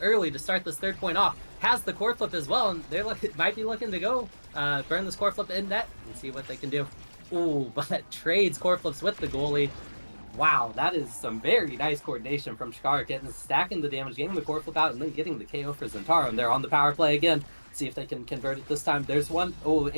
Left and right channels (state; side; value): inverted; both; correlation -1.00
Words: to start this third point off. Has the core flip as well, and they're might be looking to go burn this core flip in net and see what they can do. Ooh, but trades core flips with the goalie. Wow, that is some very nice coordination from Chikara Kittens, stacking the damage, getting the core flip out, and then getting the KO for Zentaro. And they're on the power play again. See if they can convert it this time. There's one. Oh,